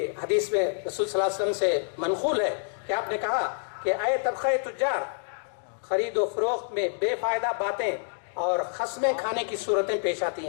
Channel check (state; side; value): silent; right; digital silence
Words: حدیث میں رسول صلی اللہ علیہ وسلم سے منقول ہے کہ آپ نے کہا کہ اے طبقہ تجار, خرید و فروخت میں بے فائدہ باتیں اور قسمیں کھانے کی صورتیں پیش آتی